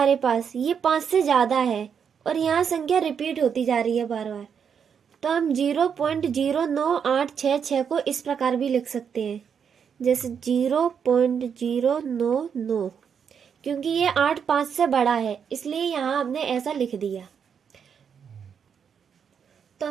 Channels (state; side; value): quieter; left; 7.2 dB